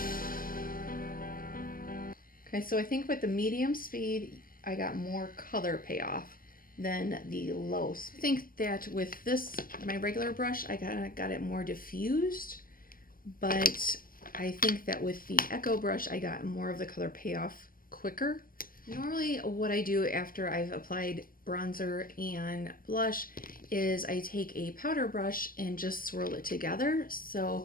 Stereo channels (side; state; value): right; late; 0.41 ms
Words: Okay, so I think with the medium speed, I got more color payoff than the low speed. I think that with this, my regular brush, I got it more diffused, but I think that with the Echo brush, I got more of the color payoff quicker. Normally what I do after I've applied bronzer and blush is I take a powder brush and just swirl it together.